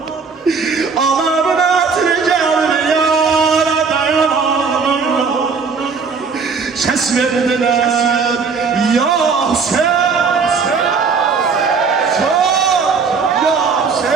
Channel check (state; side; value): quieter; left; 5.2 dB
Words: ses verdiler ya sen